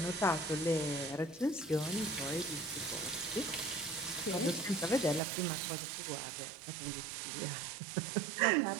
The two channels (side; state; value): left; drops out; at 5.2 s